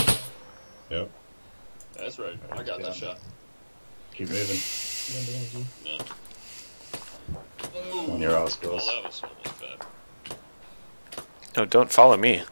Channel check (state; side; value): inverted; both; correlation -1.00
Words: Yep. That's right. I got that shot. Keep moving. No. On your ass, Oh, guys. that was almost bad. No, don't follow me.